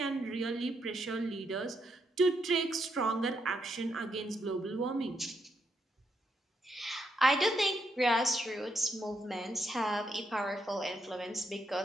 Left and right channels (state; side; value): normal; both; correlation 0.79